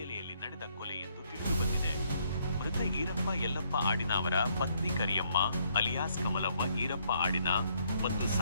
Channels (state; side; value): inverted; both; correlation -0.70